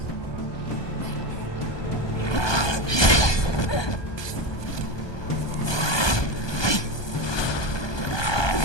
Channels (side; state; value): right; late; 1.2 ms